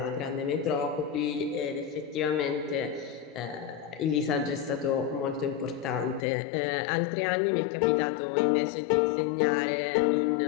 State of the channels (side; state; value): right; drops out; at 6.2 s